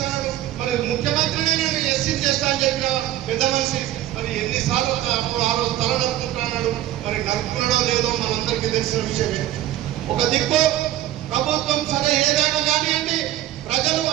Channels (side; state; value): left; quieter; 13.7 dB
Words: మరి ముఖ్యమంత్రినే నేను ఎస్సీ చేస్తా అని చెప్పిన పెద్ద మనిషి మరి ఎన్నిసార్లు అప్పుడు ఆ రోజు తల నరుకుంటున్నాడు. మరి నరుకున్నాడో లేదో మనందరికీ తెలిసిన విషయమే. ఒక దిక్కు ప్రభుత్వం సరే కానివ్వండి, ప్రజలు